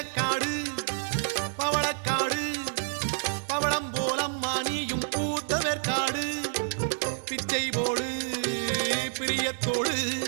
பவளக்காடு பவளம் போலம்மா நீயும் பூத்தவேற்காடு பிச்சை போடு பிரியத்தோடு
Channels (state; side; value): silent; left; digital silence